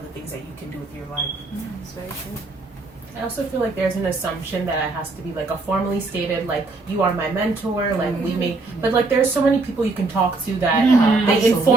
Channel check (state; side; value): quieter; left; 3.5 dB